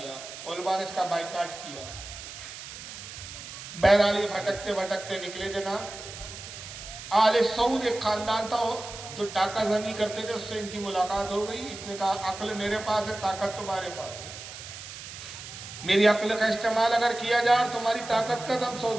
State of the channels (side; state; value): right; noise; hiss, 12 dB below the sound